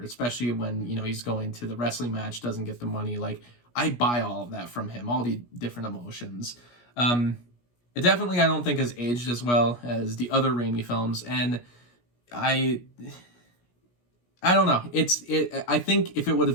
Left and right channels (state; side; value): late; right; 17 ms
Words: especially when, he's going to the wrestling match, doesn't get the money. Like, I buy all of that from him, all the different emotions. It definitely, I don't think, has aged as well as the other Raimi films, and I don't know. I think if it would